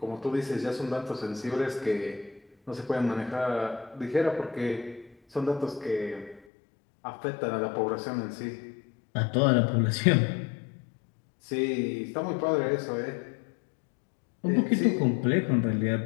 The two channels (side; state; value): right; drops out; at 6.4 s